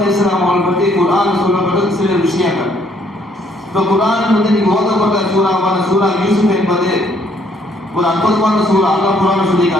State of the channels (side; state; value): both; normal; correlation 0.67